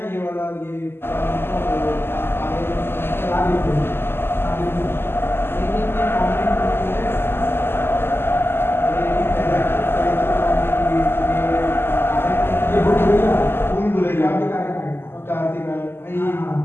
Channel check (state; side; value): late; right; 0.11 ms